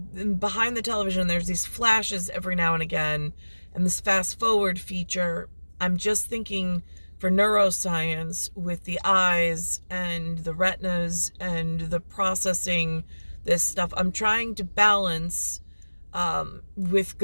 behind the television, there's these flashes every now and again. And this fast forward feature, I'm just thinking for neuroscience with the eyes and the retinas and the processing this stuff, I'm trying to balance with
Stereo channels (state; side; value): inverted; both; correlation -1.00